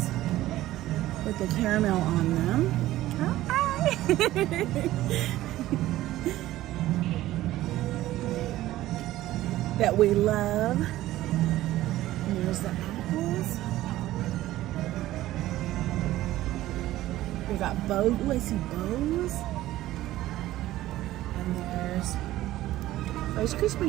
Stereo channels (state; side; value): quieter; left; 15.3 dB